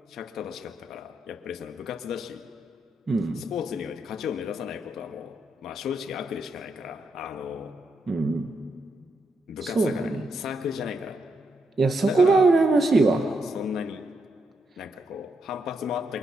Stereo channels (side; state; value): both; normal; correlation 0.81